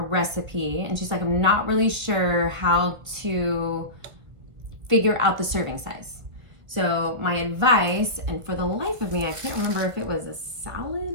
and she's like, I'm not really sure how to figure out the serving size. So my advice, and for the life of me, I can't remember if it was a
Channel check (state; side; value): late; left; 1.5 ms